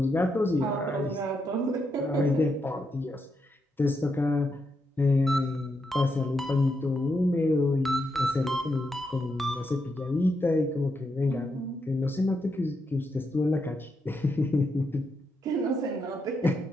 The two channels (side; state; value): both; normal; correlation 0.82